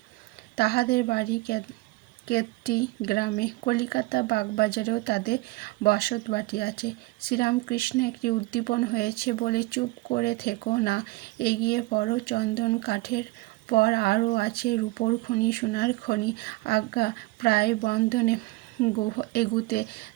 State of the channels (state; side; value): quieter; left; 21.6 dB